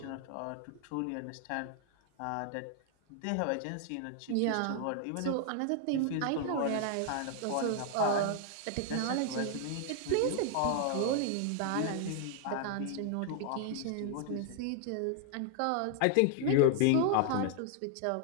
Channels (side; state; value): both; different; correlation 0.00